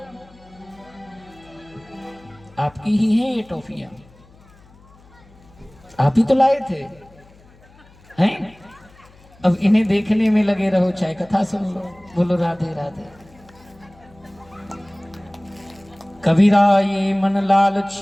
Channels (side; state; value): left; noise; hum, 26 dB below the sound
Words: आपकी ही है ये टॉफियां, आप ही तो लाए थे हैं? अब इन्हें देखने में लगे रहो, चाहे कथा सुन लो। बोलो राधे राधे। कबीरा ये मन